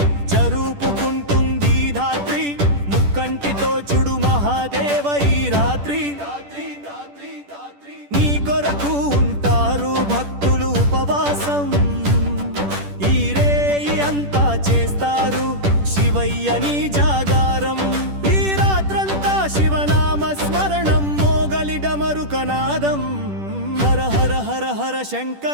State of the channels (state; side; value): late; left; 10 ms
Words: జరుపుకుంటుంది ధాత్రి ముక్కంటితో చూడు మహాదేవ ఈ రాత్రి నీ కొరకు ఉంటారు భక్తులు ఉపవాసం ఈ రేయి అంతా చేస్తారు శివయ్యని జాగారం ఈ రాత్రంతా శివనామ స్మరణం మోగలి డమరుకనాదం హర హర హర హర